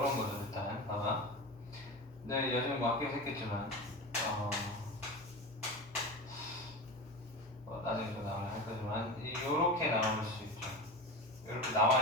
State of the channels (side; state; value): both; normal; correlation 0.26